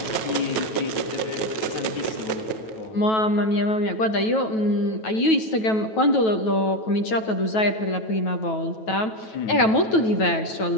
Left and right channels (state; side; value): late; right; 9.2 ms